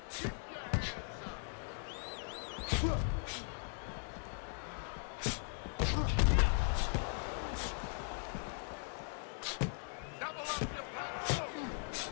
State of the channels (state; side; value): silent; right; 52 dB below the other